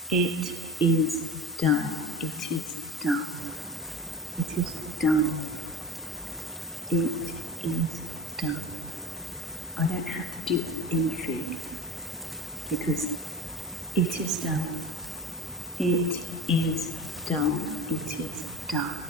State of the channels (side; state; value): both; normal; correlation 0.33